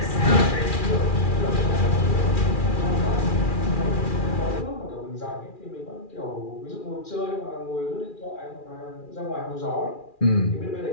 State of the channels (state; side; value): late; right; 2.4 ms